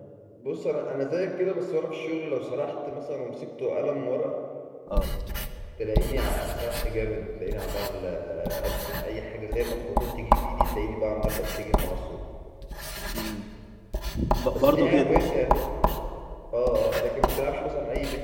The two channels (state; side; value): identical; both; correlation 1.00